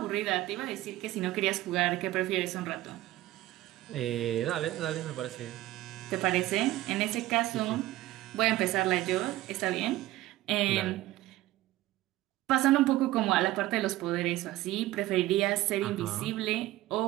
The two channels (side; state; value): left; quieter; 16.3 dB